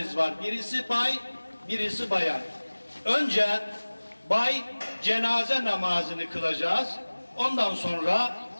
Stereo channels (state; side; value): inverted; both; correlation -1.00